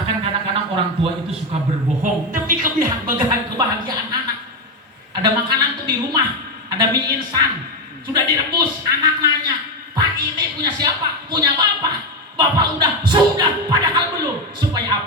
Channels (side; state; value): both; normal; correlation 0.11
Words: kadang-kadang orang tua itu suka berbohong demi kebahagiaan anak. Ada makanan tuh di rumah, ada mie instan, sudah direbus, anak nanya, Pak ini punya siapa? Punya bapak. Bapak sudah, padahal belum. Supaya